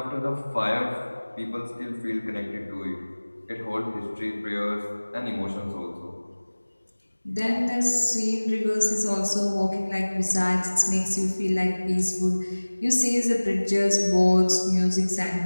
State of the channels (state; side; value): inverted; both; correlation -1.00